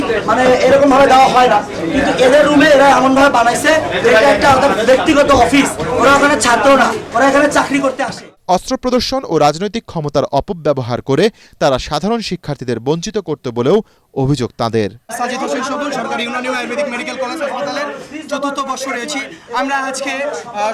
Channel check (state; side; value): identical; both; correlation 1.00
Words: এরকম ভাবে দেওয়া হয় না, কিন্তু এদের রুমে এরা এমন ভাবে বানাইছে এটা একটা ব্যক্তিগত অফিস। ওরা ওখানে ছাত্র না, ওরা এখানে চাকরি করতে আসে। অস্ত্র প্রদর্শন ও রাজনৈতিক ক্ষমতার অপব্যবহার করে তারা সাধারণ শিক্ষার্থীদের বঞ্চিত করতে বলেও অভিযোগ তাদের। সাজিদ হোসেন সবুজ, সরকারি ইউনানি আয়ুর্বেদিক মেডিকেল কলেজ হাসপাতালের ৪র্থ বর্ষ রয়েছি। আমরা আজকে